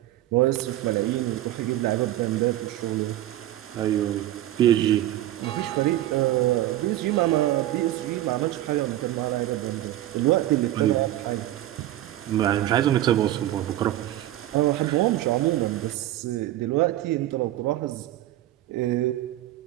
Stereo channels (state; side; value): quieter; left; 14.3 dB